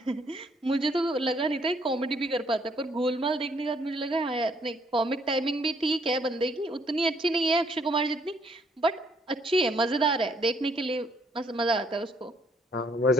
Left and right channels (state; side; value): normal; both; correlation 0.67